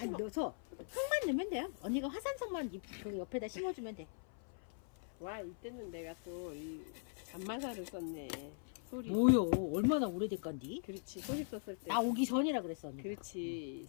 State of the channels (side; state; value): right; silent; 51 dB below the other